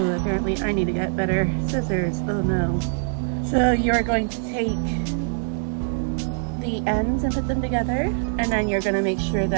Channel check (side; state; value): left; silent; digital silence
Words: apparently I need to get better scissors. Oh no. So you're going to take the ends and put them together, and then you're going to make sure